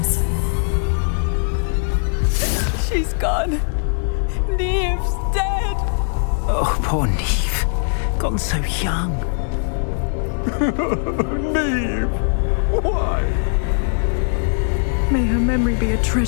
She's gone. Neve's dead. Oh, poor Neve. Gone so young. Neve! Why? May her memory be a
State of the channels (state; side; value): silent; right; digital silence